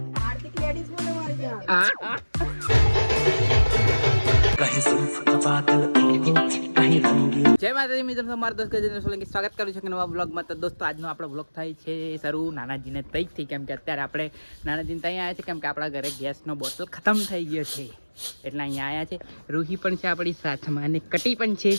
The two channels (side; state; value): both; inverted; correlation -1.00